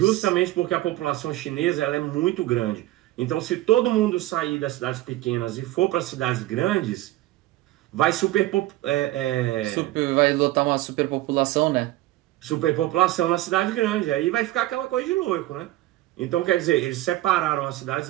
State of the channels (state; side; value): quieter; left; 16.5 dB